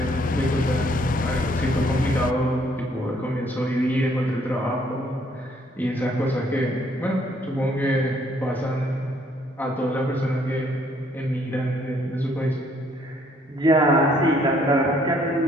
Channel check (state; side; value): normal; both; correlation 0.65